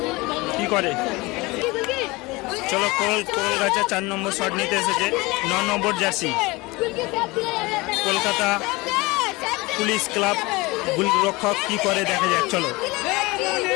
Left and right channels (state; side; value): quieter; right; 23.1 dB